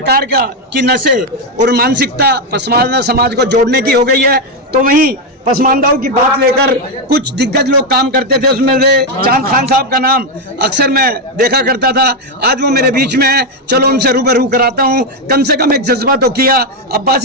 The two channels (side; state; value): both; normal; correlation 0.05